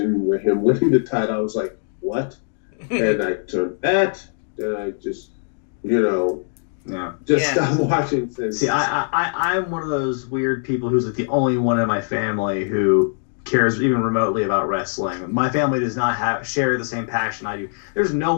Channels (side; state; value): right; silent; 65 dB below the other